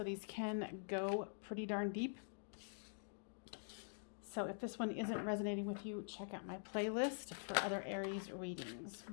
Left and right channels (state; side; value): silent; right; digital silence